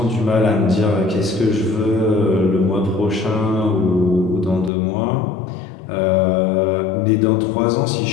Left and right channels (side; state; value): right; drops out; at 4.7 s